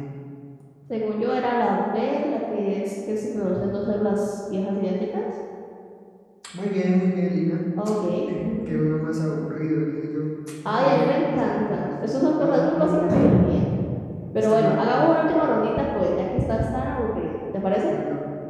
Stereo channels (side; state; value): both; identical; correlation 1.00